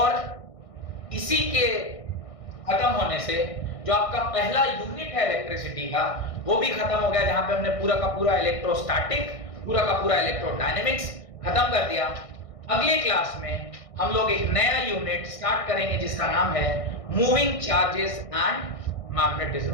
इसी के खत्म होने से जो आपका पहला यूनिट है इलेक्ट्रिसिटी का वो भी खत्म हो गया, जहां पे हमने पूरा का पूरा इलेक्ट्रोस्टैटिक, पूरा का पूरा इलेक्ट्रोडायनेमिक्स खत्म कर दिया। अगले क्लास में हम लोग एक नया यूनिट स्टार्ट करेंगे जिसका नाम है मूविंग चार्जेस एंड मैग्नेटिज्म।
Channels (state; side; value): late; right; 1.6 ms